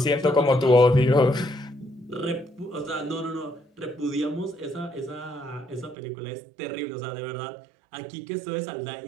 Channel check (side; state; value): left; drops out; at 6.0 s